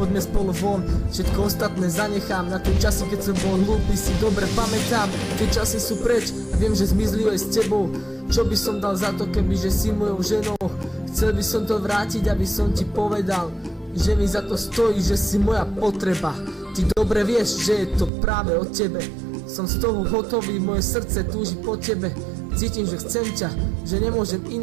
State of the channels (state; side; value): drops out; left; at 18.1 s